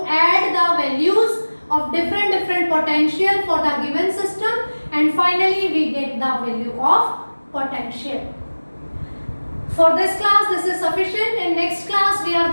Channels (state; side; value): inverted; both; correlation -1.00